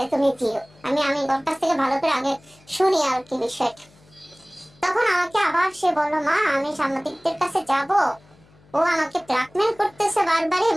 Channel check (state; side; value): noise; left; hum, 29 dB below the sound